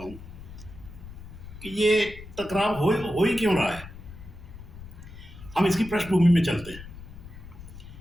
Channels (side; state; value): left; noise; rumble, 15 dB below the sound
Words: कि ये टकराव हो ही क्यों रहा है। हम इसकी पृष्ठभूमि में चलते हैं।